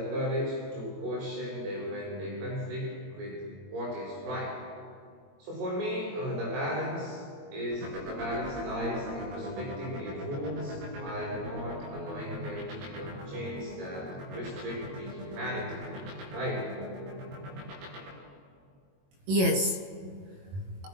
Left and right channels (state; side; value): late; left; 21 ms